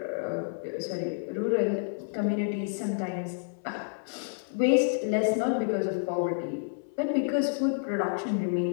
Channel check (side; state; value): right; silent; 58 dB below the other